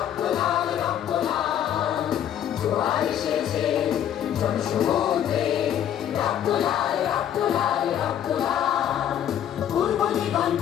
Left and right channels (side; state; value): right; quieter; 10.2 dB